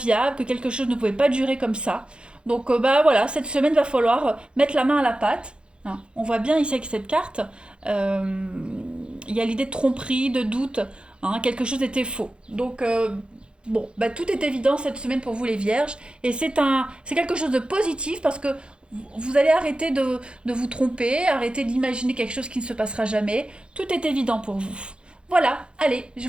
que quelque chose ne pouvait pas durer comme ça. Donc voilà, cette semaine va falloir mettre la main à la pâte. Hein. On voit bien ici avec cette carte, il y a l'idée de tromperie, de doute. Hein, quelque chose était faux. Donc bon, tout est évident cette semaine pour vous les vierges et c'est quelque chose de positif parce que vous allez arrêter de vous tromper, arrêter d'imaginer quelque chose qui ne se passera jamais. Tout est évident pour vous. Voilà, allez, je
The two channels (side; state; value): left; late; 0.054 ms